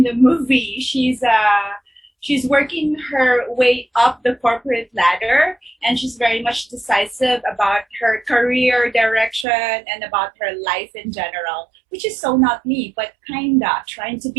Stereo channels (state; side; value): drops out; left; at 9.5 s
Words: the movie. She's working her way up the corporate ladder, and she's very much decisive about her career direction and about her life in general, which is so not me, but kinda trying to